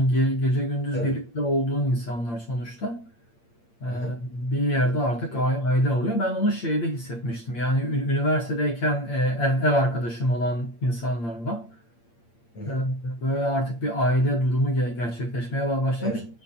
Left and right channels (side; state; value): right; late; 8.6 ms